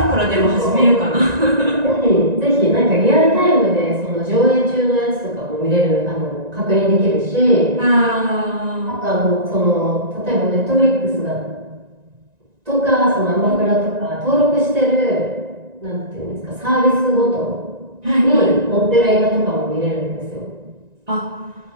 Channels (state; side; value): late; left; 1.9 ms